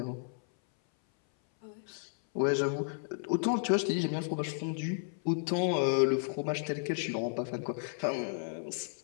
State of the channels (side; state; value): right; silent; 56 dB below the other